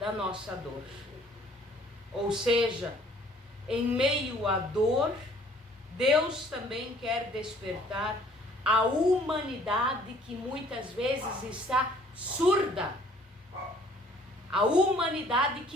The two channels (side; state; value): both; normal; correlation 0.57